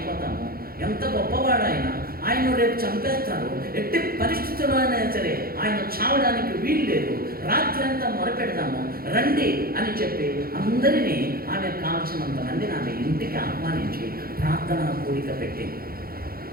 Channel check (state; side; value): late; left; 0.43 ms